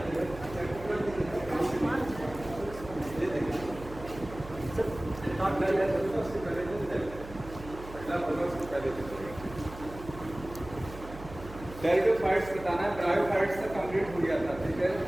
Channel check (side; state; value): right; noise; hum, 14 dB below the sound